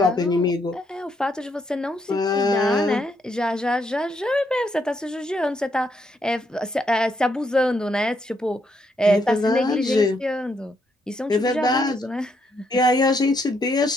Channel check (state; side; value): normal; both; correlation 0.76